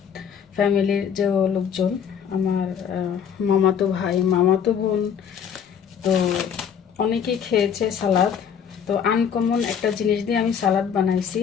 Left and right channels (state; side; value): quieter; right; 7.8 dB